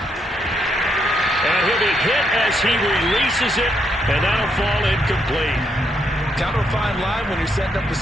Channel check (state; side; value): normal; both; correlation 0.76